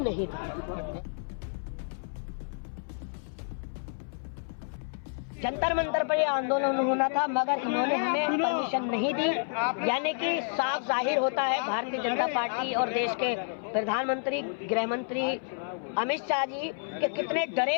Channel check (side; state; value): right; silent; 58 dB below the other